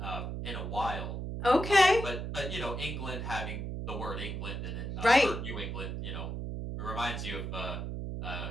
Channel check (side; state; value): right; noise; hum, 4 dB below the sound